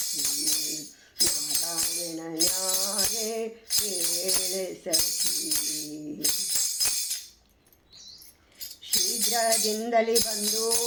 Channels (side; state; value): both; identical; correlation 1.00